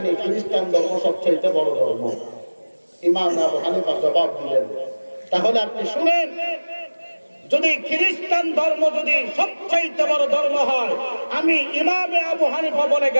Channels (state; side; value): inverted; both; correlation -1.00